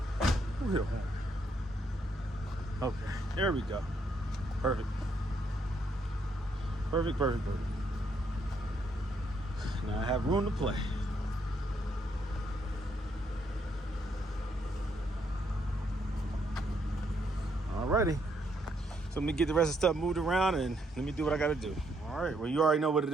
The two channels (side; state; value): both; normal; correlation 0.74